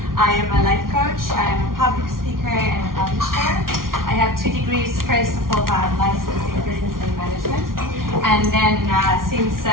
I am a life coach, I am a public speaker and a publisher. I have 2 degrees. First of all, I'm licensed in business and management. And then since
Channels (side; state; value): left; late; 0.92 ms